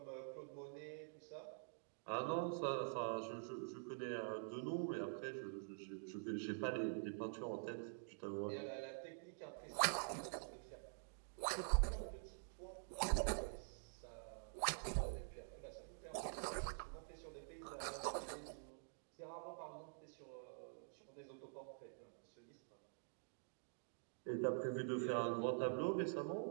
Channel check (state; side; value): silent; left; digital silence